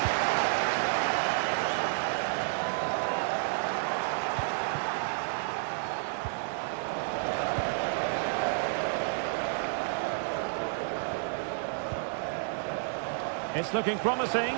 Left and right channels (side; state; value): left; silent; digital silence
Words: It's looking promising,